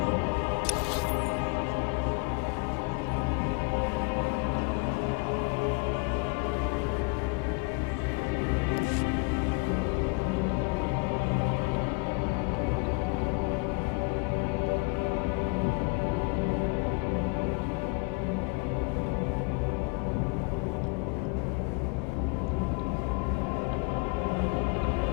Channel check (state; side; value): quieter; right; 30.8 dB